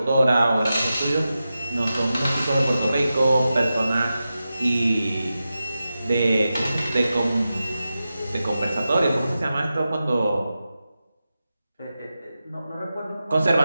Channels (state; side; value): inverted; both; correlation -0.92